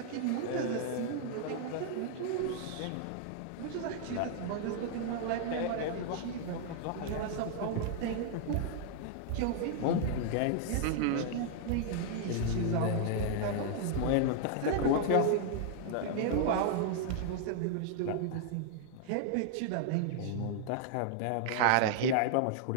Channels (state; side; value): different; both; correlation -0.01